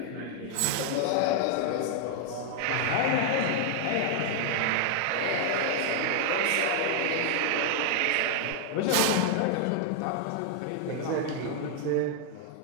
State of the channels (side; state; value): both; different; correlation 0.00